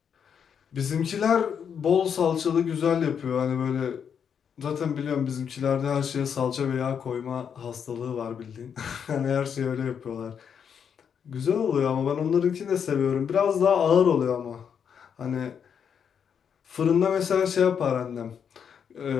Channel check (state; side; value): quieter; right; 7.5 dB